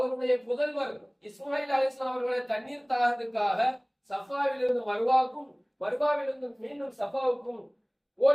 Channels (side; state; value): both; identical; correlation 1.00